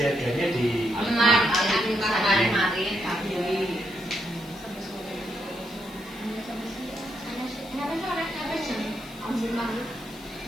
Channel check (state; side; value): noise; left; hiss, 21 dB below the sound